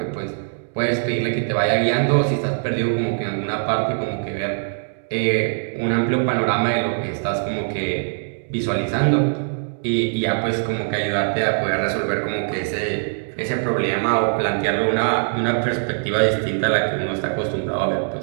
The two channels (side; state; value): left; silent; digital silence